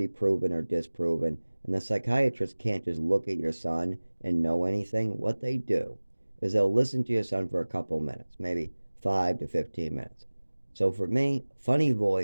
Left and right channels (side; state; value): both; inverted; correlation -1.00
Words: proven or disproven. And the psychiatrist can't just look at your son and know anything. What they do is they'll listen to your son for a couple minutes, maybe 5 to 15 minutes. So for me, funny